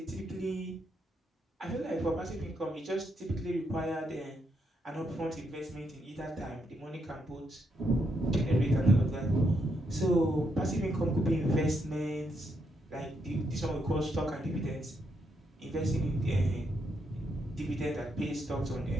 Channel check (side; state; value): both; normal; correlation 0.79